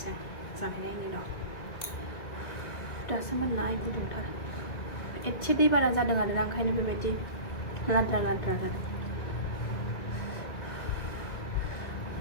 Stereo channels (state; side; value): late; right; 2.0 ms